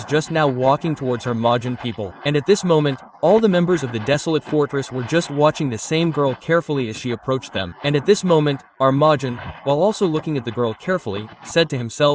just now walking towards her Majin people. And at this moment, all the members of the desolate fortress were just watching the same girl carefully as she approached them. And at this moment, our Majin, while also looking at the girl carefully, said to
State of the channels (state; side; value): identical; both; correlation 1.00